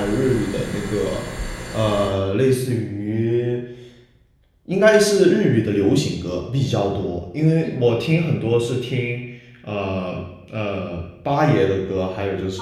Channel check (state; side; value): identical; both; correlation 1.00